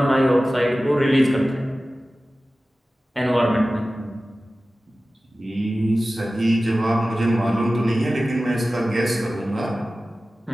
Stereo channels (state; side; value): normal; both; correlation 0.96